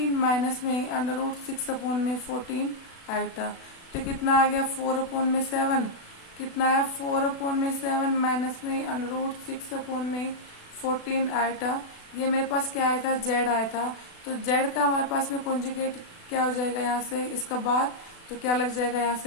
माइनस में √6 अपॉन में 14 आइटा, तो कितना आ गया 4 अपॉन में 7, कितना है 4 अपॉन में 7 माइनस में √6 अपॉन में 14 आइटा। ये मेरे पास क्या आया था z आया था, तो z का हमारे पास में कॉन्जुगेट क्या हो जाएगा यहाँ से इसका बाद, तो क्या लग जाएगा यहाँ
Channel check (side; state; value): right; late; 36 ms